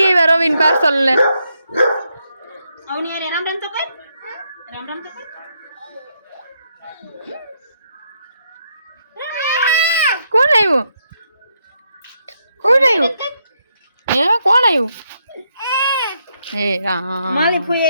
આવ્યા રવિન પાર્સલ ને. રામ રામ તો કઈ રામ રામ તો કઈ કોણ આવ્યું? કોણ આવ્યું? હે કોણ આવ્યું? હે રામ. માલી ફૂઈ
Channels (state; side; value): inverted; both; correlation -0.78